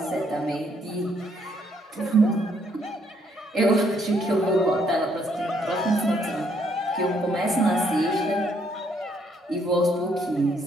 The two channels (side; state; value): both; normal; correlation 0.70